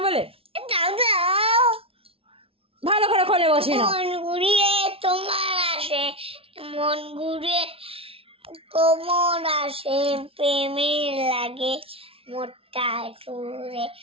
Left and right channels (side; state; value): left; late; 0.27 ms